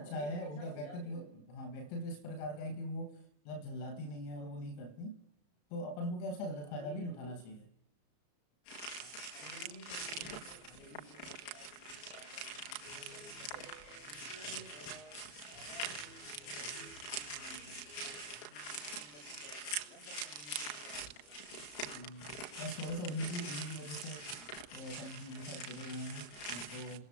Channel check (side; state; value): right; late; 34 ms